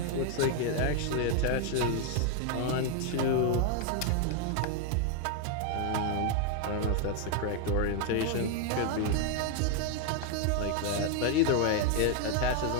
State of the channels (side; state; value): both; different; correlation 0.01